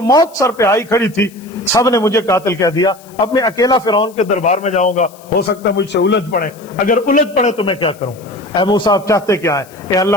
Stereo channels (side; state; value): left; noise; hiss, 25 dB below the sound